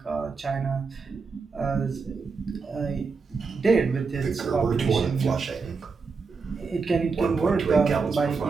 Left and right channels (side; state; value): left; quieter; 4.8 dB